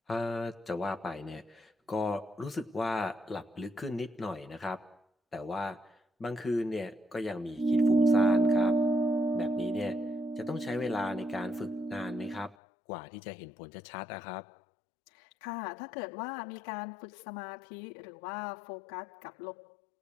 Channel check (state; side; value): drops out; right; at 12.6 s